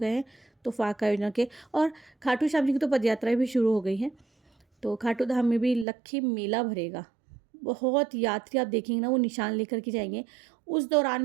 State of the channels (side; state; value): left; drops out; at 5.9 s